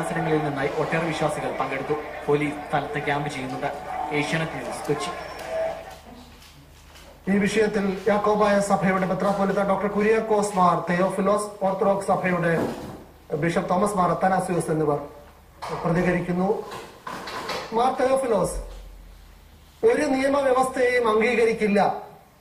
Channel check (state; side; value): identical; both; correlation 1.00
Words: നിന്നായി ഒട്ടേറെ വിശ്വാസികൾ പങ്കെടുത്തു. പോലീസ് സ്ഥലത്ത് ക്യാമ്പ് ചെയ്യുന്നുണ്ട്. ഏഷ്യാനെറ്റ് ന്യൂസ്, കൊച്ചി. ഈ വിഷയത്തിൽ യാക്കോബായ സഭയുടെ മെത്രാപ്പോലിത്ത ഡോക്ടർ കുര്യാക്കോസ് മാർ തെയോഫിലോസ്, ഓർത്തഡോക്സ് സഭയുടെ ബിഷപ്പ് തോമസ് മാർ അത്തനാസിയോസ് എന്നിവർ പ്രതികരിക്കുന്നു. മാർ തെയോഫിലോസ്, ഒരു നിയമവ്യവസ്ഥയെയും അംഗീകരിക്കില്ല,